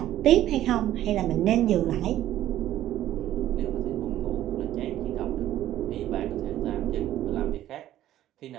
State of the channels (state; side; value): quieter; left; 13.0 dB